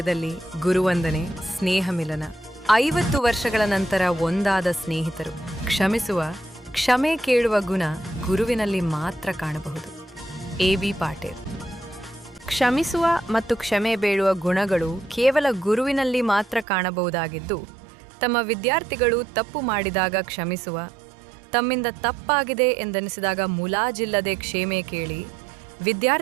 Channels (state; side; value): drops out; left; at 16.7 s